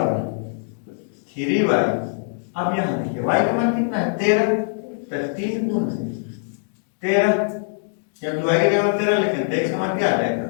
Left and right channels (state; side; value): silent; right; digital silence